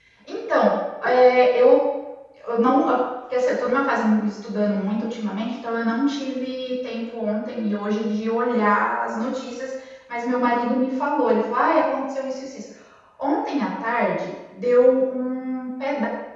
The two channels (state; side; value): identical; both; correlation 1.00